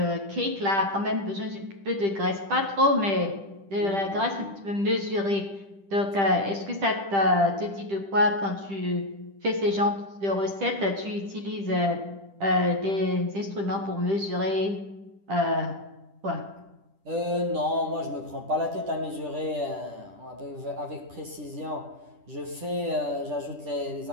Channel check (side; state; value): left; late; 10 ms